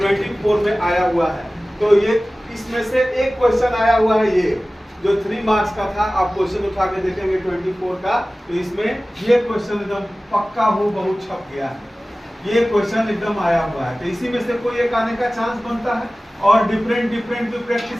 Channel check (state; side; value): normal; both; correlation 0.97